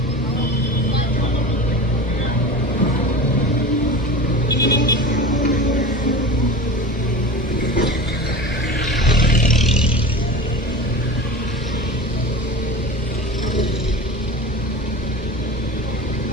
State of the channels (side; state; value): both; normal; correlation 0.32